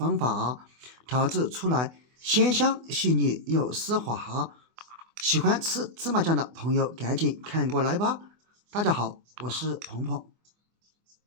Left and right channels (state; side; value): late; left; 24 ms